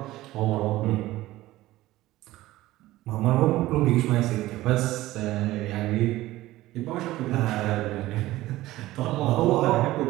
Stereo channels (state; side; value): quieter; left; 16.7 dB